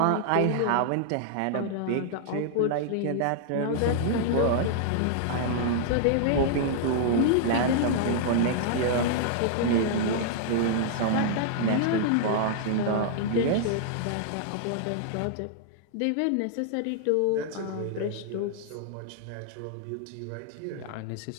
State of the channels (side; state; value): both; different; correlation -0.01